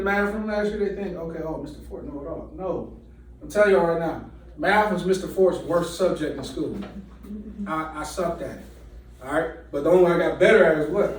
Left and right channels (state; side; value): identical; both; correlation 1.00